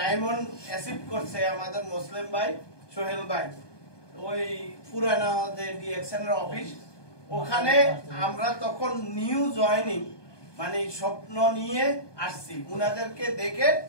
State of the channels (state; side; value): late; right; 1.2 ms